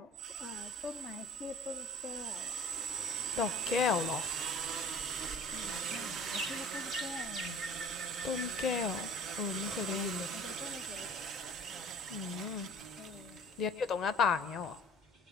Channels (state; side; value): normal; both; correlation 0.47